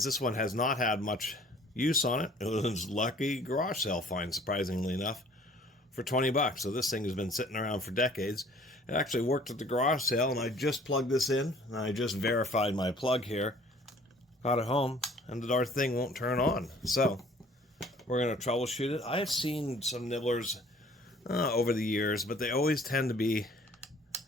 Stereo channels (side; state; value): both; normal; correlation 0.54